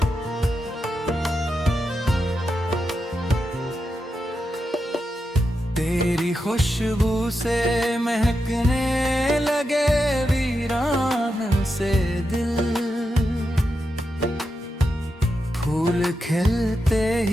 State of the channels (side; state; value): both; normal; correlation 0.87